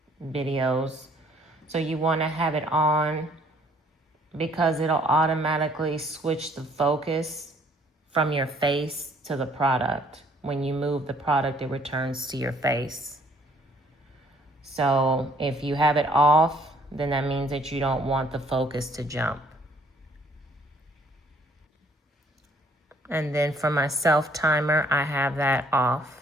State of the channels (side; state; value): both; normal; correlation 0.61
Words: videos. So you want to have it on because it'll automatically switch the focus from your face to the product. When you move the product, it returns to your face. So if you have it off, then that means that you don't want the focus to jump. And then for my self timer, I have that